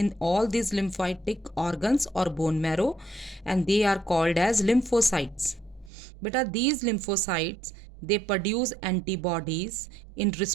all these lymphatic organs or bone marrow, and they are called as lymphocytes. Beta, these lymphocytes, they produce antibodies in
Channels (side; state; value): left; drops out; at 5.9 s